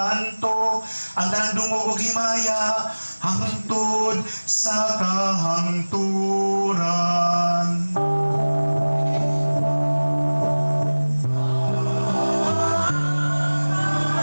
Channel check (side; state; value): both; inverted; correlation -1.00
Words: Ang tanang dungog ug himaya hangtod sa kahangturan.